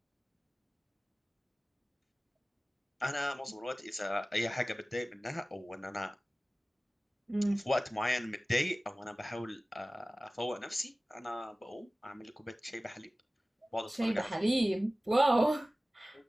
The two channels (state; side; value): normal; both; correlation 0.97